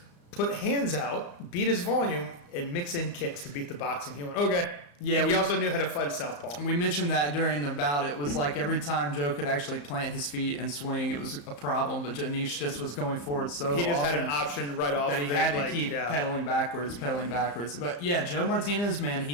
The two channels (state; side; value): late; right; 34 ms